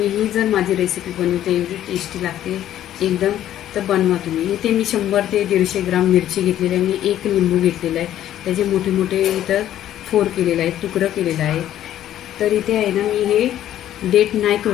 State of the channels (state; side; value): quieter; right; 12.0 dB